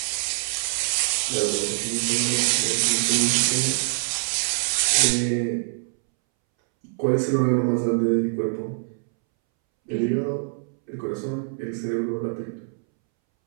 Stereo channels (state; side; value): silent; left; 62 dB below the other